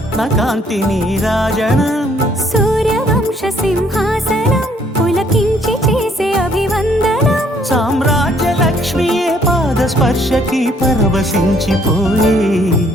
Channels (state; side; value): normal; both; correlation 0.65